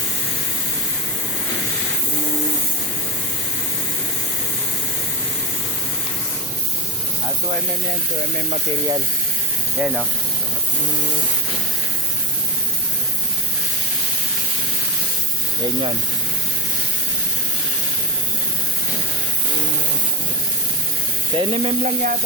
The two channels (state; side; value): normal; both; correlation 0.25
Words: Ah, 2mm yan, 2mm material. Yan o. Yan yan. $10mm lang